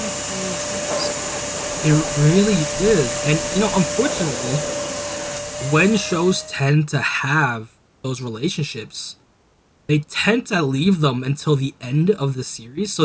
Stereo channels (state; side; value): identical; both; correlation 1.00